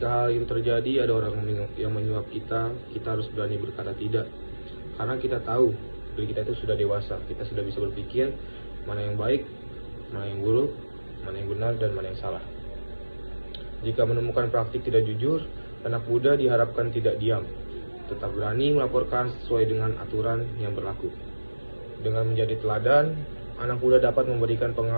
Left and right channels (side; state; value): both; inverted; correlation -1.00